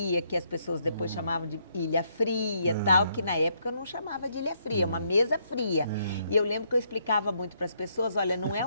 que as pessoas depois chamavam de ilha fria, tal, que na época eu não chamava de ilha fria, uma mesa fria. E eu lembro que eu explicava muito para as pessoas, olha, não é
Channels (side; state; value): both; inverted; correlation -0.73